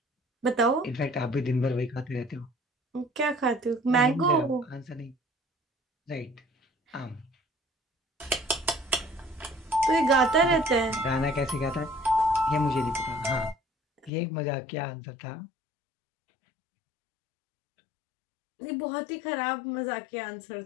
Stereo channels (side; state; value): right; drops out; at 14.1 s